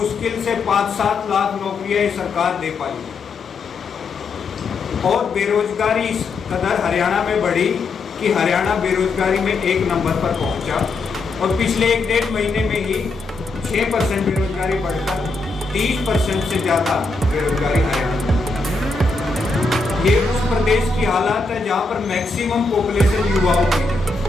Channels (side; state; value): right; quieter; 3.7 dB